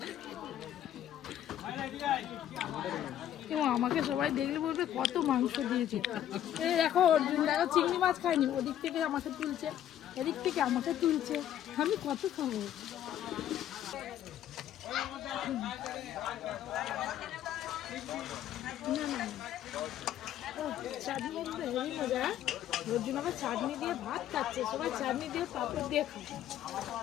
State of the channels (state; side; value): quieter; right; 11.3 dB